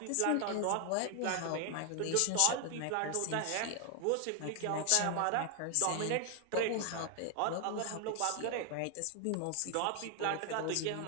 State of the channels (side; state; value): both; different; correlation 0.00